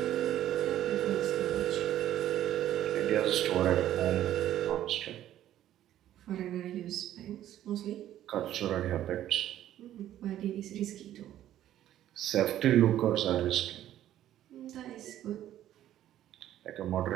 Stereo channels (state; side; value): quieter; left; 12.3 dB